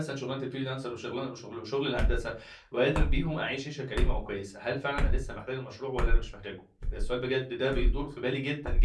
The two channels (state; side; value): identical; both; correlation 1.00